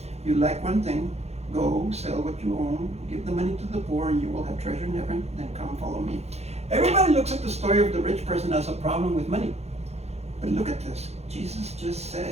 "You lack one thing. Go, sell what you own, give the money to the poor, and you will have treasure in heaven. Then come follow me." Everybody looks at the story of the rich person as a problem with money. But look at this. Jesus just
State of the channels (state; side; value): late; left; 0.31 ms